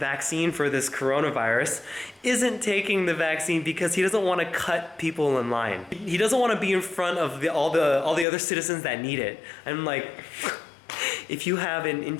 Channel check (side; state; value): right; drops out; at 8.2 s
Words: for this coronavirus, isn't taking the vaccine because he doesn't want to cut people in line. He doesn't want to be in front of all the other citizens that need it. I'm like, if you have an